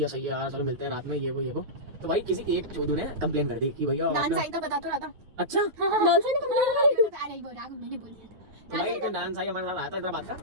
सही है यार, चलो मिलते हैं रात में, ये वो। तो भाई किसी एक चोदू ने कंप्लेन कर दी कि भैया डांस आई तो बता तो रहा था। अच्छा डांसर ने कंप्लेन करी। अरे वो राघव मैंने बोल दिया था। तो भाई एक डांस आई हमारे साथ आया था इधर बात का,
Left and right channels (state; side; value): late; left; 9.3 ms